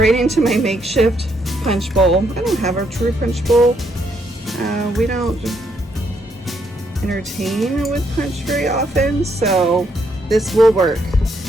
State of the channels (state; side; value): normal; both; correlation 0.74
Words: into my makeshift punch bowl. I don't have a true punch bowl. We don't entertain with punch very often, so this will work.